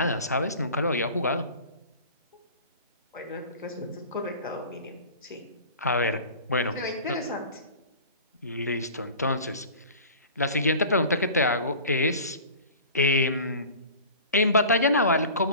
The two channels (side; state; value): both; inverted; correlation -0.39